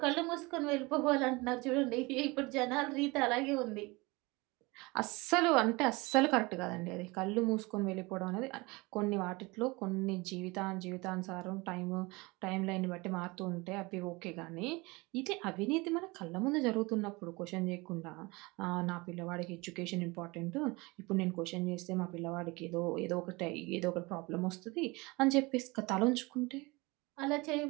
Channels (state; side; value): quieter; left; 24.5 dB